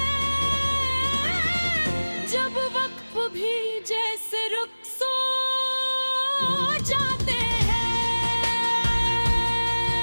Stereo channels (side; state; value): both; inverted; correlation -1.00